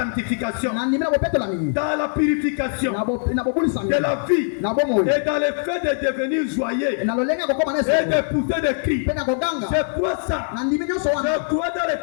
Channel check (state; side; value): silent; right; digital silence